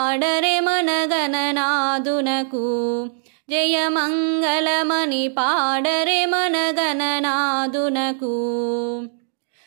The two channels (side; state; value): left; silent; digital silence